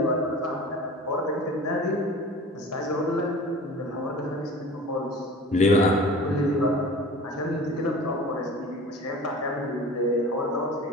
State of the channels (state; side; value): normal; both; correlation 0.40